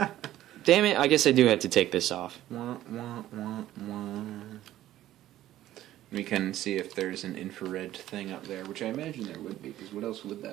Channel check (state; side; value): quieter; left; 13.7 dB